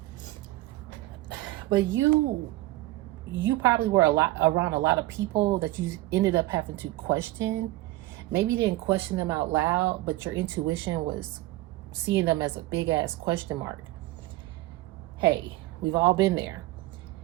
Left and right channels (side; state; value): left; quieter; 18.0 dB